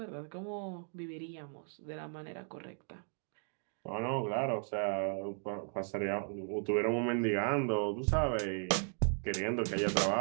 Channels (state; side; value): silent; left; 54 dB below the other